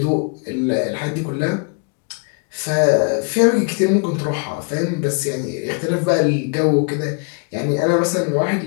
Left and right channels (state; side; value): quieter; right; 38.2 dB